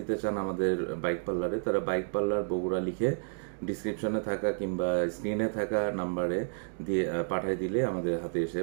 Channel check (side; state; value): left; silent; digital silence